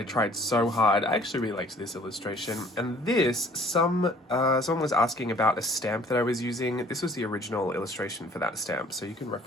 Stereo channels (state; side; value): normal; both; correlation 0.54